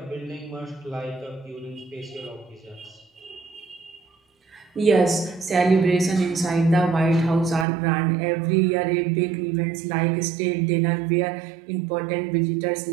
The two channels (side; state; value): left; drops out; at 7.7 s